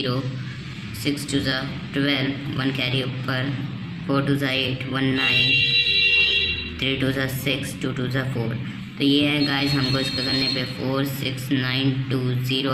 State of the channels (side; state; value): both; identical; correlation 1.00